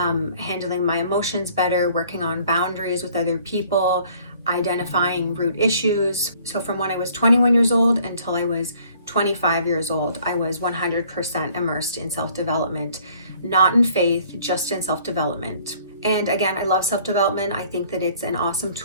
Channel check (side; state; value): both; inverted; correlation -0.57